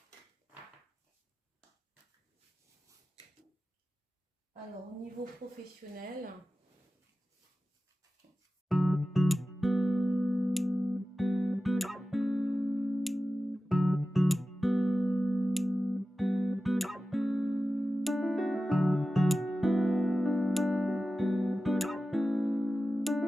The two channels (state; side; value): normal; both; correlation 0.94